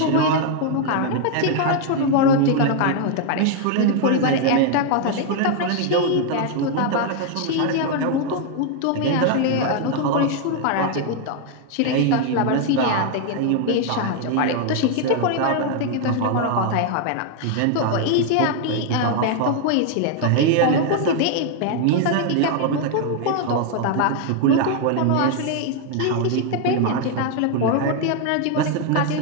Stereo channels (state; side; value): different; both; correlation 0.00